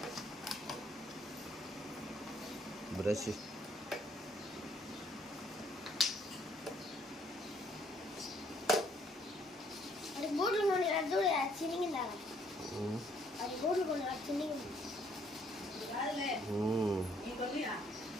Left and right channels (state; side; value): normal; both; correlation 0.66